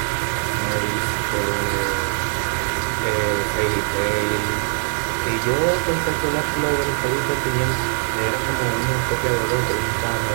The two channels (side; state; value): left; silent; digital silence